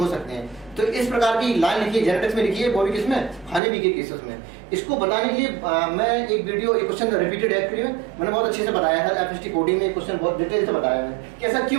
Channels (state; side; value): drops out; left; at 3.6 s